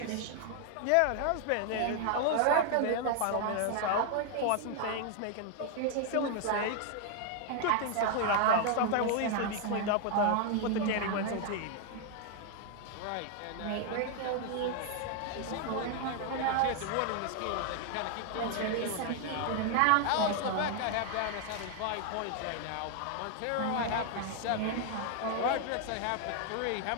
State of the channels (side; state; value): both; different; correlation 0.00